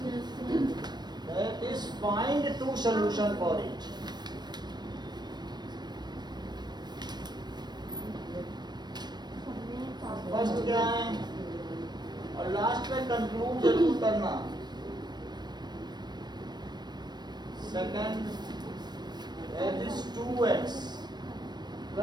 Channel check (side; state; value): left; late; 0.21 ms